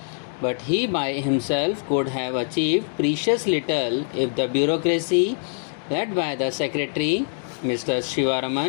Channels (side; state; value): right; silent; 63 dB below the other